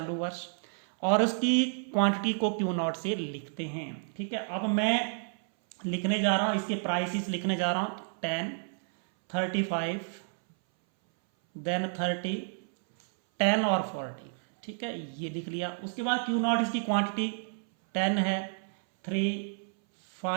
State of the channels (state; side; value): silent; left; 58 dB below the other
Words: वर्ष, और उसकी क्वांटिटी को Q0 से लिखते हैं, ठीक है। अब मैं लिखने जा रहा हूं, इसके प्राइसेस लिखने जा रहा हूं, 10, 35, देन 30, 10 और 40, ठीक है, ये लिख लिया। उसके बाद Q0 इसकी क्वांटिटी 10 है, 3,